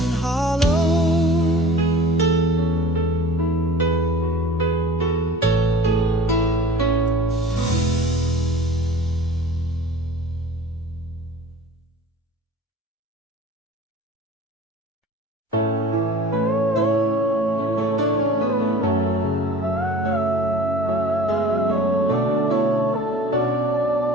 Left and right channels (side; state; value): both; normal; correlation 0.42